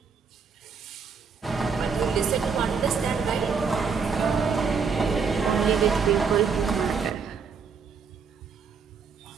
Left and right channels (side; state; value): left; quieter; 5.6 dB